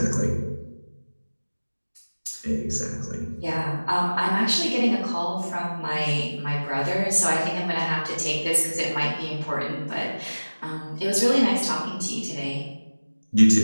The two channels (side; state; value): both; inverted; correlation -1.00